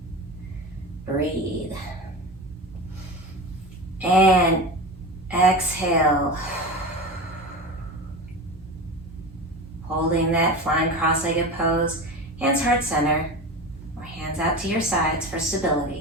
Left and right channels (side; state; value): both; normal; correlation 0.28